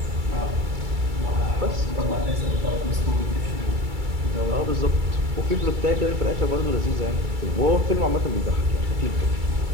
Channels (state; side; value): late; left; 2.3 ms